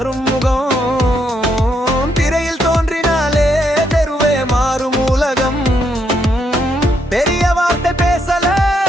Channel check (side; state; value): both; normal; correlation 0.76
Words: முகம் திரையில் தோன்றினாலே தெருவே மாறும் உலகம் பெரிய வார்த்தை பேசல